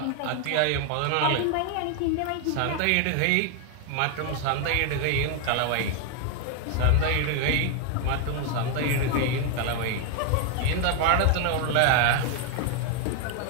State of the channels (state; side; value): different; both; correlation 0.01